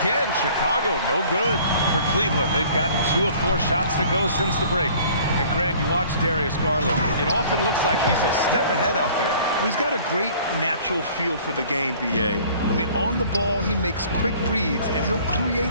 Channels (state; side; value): inverted; both; correlation -0.52